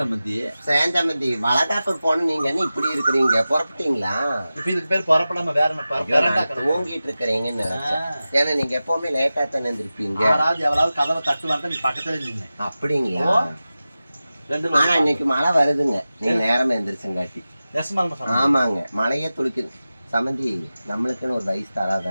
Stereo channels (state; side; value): inverted; both; correlation -0.95